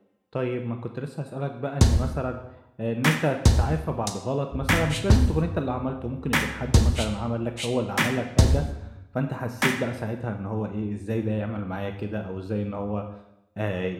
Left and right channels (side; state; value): both; identical; correlation 1.00